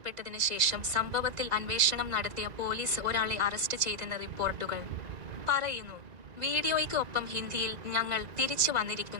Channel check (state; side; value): late; left; 1.9 ms